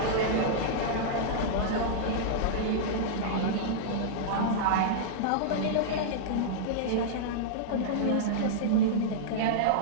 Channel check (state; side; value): different; both; correlation -0.02